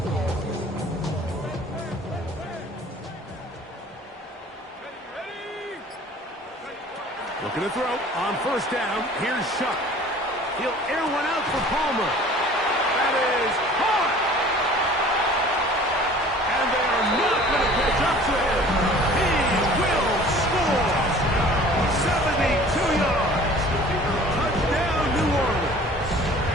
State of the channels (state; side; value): normal; both; correlation 0.48